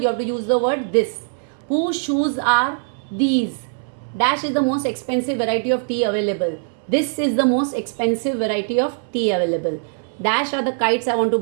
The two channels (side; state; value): left; silent; 65 dB below the other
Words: have to use the word this. Whose shoes are these? Dash is the most expensive variety of tea available. This is the most expensive variety of tea available. Dash are the kites I want to